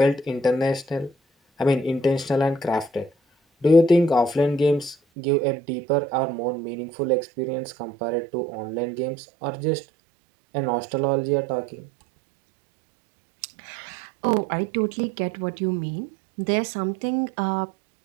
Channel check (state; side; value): drops out; left; at 5.0 s